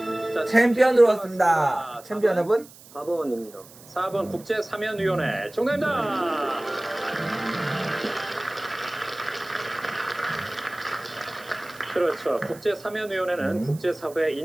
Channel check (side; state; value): right; noise; hiss, 21 dB below the sound